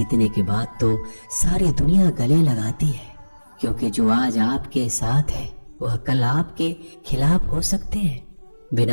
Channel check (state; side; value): inverted; both; correlation -1.00